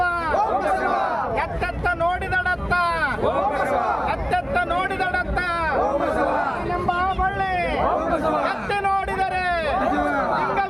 ಎತ್ತೆತ್ತ ನೋಡಿದಡತ್ತ, ಎತ್ತೆತ್ತ ನೋಡಿದಡತ್ತ ಎಂಬ ಬಳ್ಳಿ ಎತ್ತಿ ನೋಡಿದರೆ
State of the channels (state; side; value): identical; both; correlation 1.00